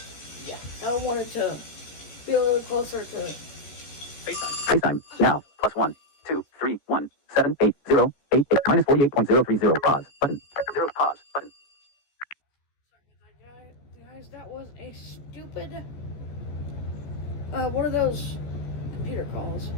yeah. I wanted to be a little closer to FaceTime. FaceTime. Now. +1 2 3 1 7 8 0 8 8 minus 48.030. Pause. Button. 0. Pause. Button. Guys, that was a stupid one of those computer calls.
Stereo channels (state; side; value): late; right; 14 ms